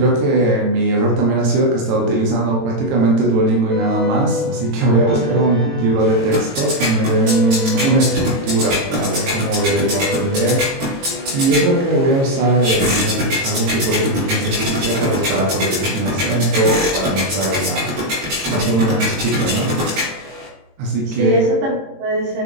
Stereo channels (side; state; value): left; late; 22 ms